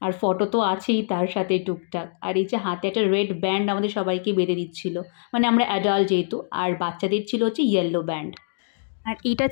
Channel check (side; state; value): right; silent; digital silence